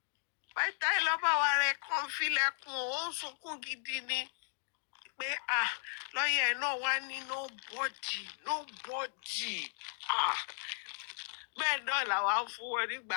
Python lọ́ba wa rẹ̀ kàn filẹ̀kùn ó ń sunkún gidi ni pé lọ́yẹ̀ náà wá ní nobody. Bẹ́ẹ̀ náà làwa ń fún wọn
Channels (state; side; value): silent; right; 54 dB below the other